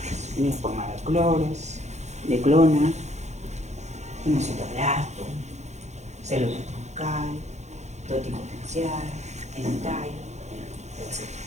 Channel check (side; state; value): left; late; 0.33 ms